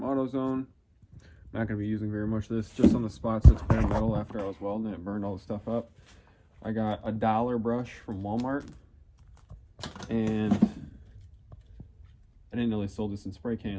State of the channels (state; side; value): identical; both; correlation 1.00